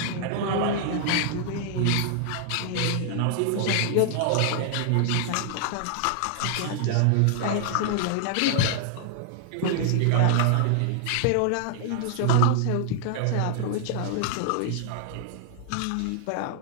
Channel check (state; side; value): different; both; correlation -0.01